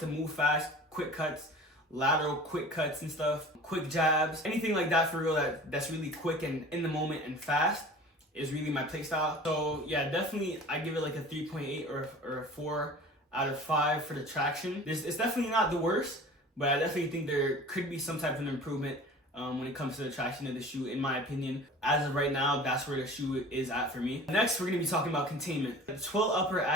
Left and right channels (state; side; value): normal; both; correlation 0.41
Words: to move fast, quick cuts, lateral quick cuts and stuff, quick jabs, anything like that for real that's really quick and in the moment and fast is really my playstyle. So yeah, definitely I give it a 3.8 or a 4 out of 5 for the traction. It's definitely not the worst, but I definitely think there could be some type of improvement when it comes to the traction of the shoe, in my opinion. As of right now, that's where the shoe is at for me. Next, we're gonna be talking about containment. The twill upper